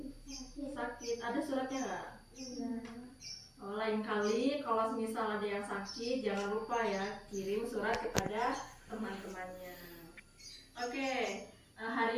sakit. Ada suratnya nggak? Oh, lain kali kalau misal ada yang sakit, jangan lupa ya kirim surat kepada teman-temannya. Oke,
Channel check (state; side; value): identical; both; correlation 1.00